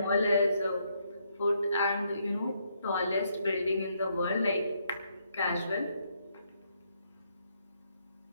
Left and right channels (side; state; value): both; inverted; correlation -0.74